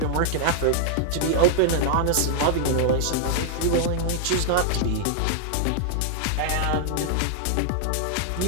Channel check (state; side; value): different; both; correlation 0.00